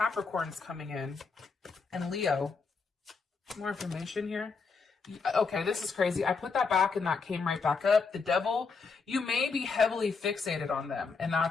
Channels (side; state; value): right; quieter; 4.8 dB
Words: coming in. And Leo. More information here. Okay, this is crazy. I put that back and that came right back up. The Devil, you may be heavily fixated on them. And